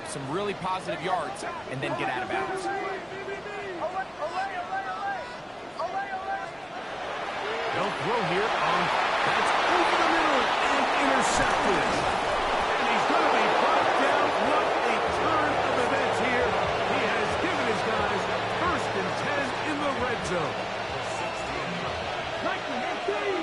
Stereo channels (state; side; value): identical; both; correlation 1.00